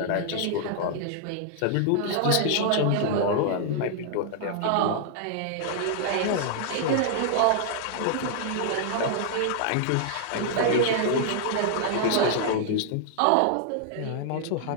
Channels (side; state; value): both; different; correlation -0.01